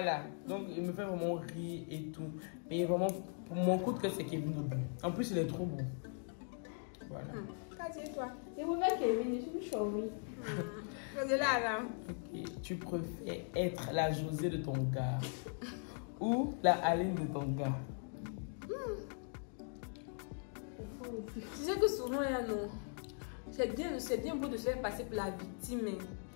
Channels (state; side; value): silent; right; 51 dB below the other